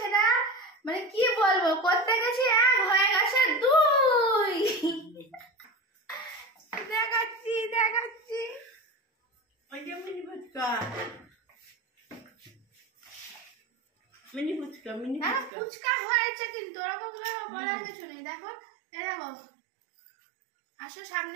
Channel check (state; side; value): drops out; left; at 15.5 s